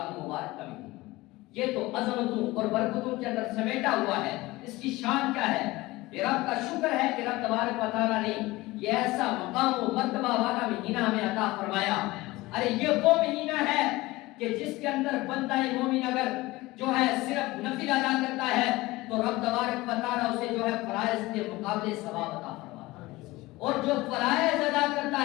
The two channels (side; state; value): right; quieter; 19.9 dB